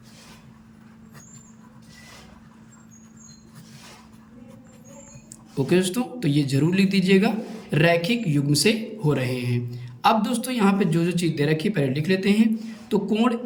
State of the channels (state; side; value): identical; both; correlation 1.00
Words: ओके दोस्तों, तो ये जरूर लिख दीजिएगा, रैखिक युग्म से हो रहे हैं। अब दोस्तों यहाँ पे जो चीज़ दे रखी है पहले लिख लेते हैं। तो कोण